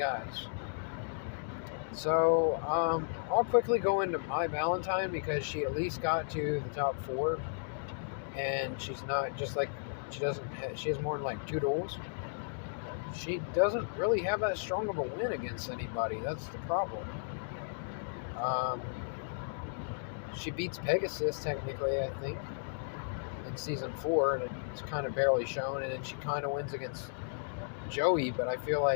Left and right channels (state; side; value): silent; right; digital silence